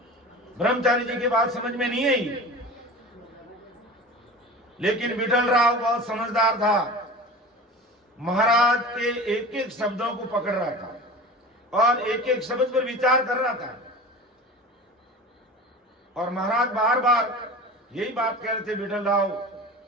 ब्रह्मचारी जी की बात समझ में नहीं आई, लेकिन विठल राव बहुत समझदार था। महाराज के एक एक शब्दों को पकड़ रहा था और एक एक शब्द पर विचार कर रहा था। और महाराज बार बार यही बात कह रहे थे विठल राव।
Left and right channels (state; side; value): normal; both; correlation 0.35